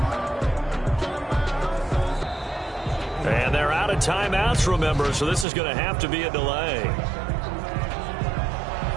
And they're out of timeouts, remember, so this is going to have to be a delay.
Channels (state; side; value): drops out; left; at 5.5 s